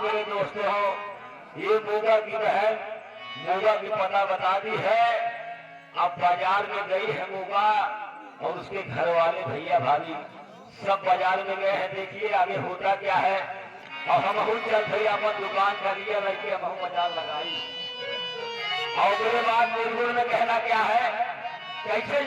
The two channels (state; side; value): identical; both; correlation 1.00